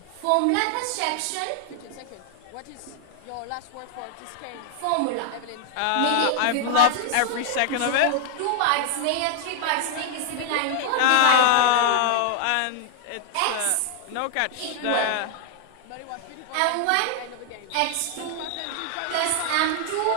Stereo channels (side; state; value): both; different; correlation 0.00